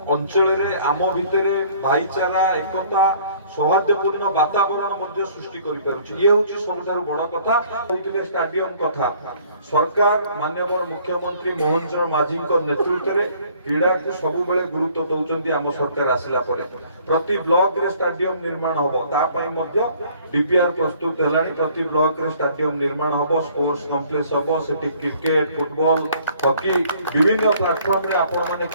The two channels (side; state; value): both; inverted; correlation -0.57